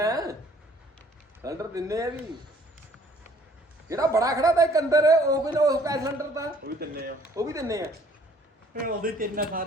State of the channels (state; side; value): normal; both; correlation 0.58